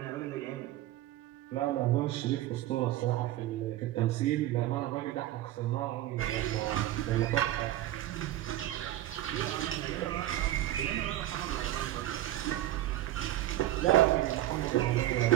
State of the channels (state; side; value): quieter; left; 14.2 dB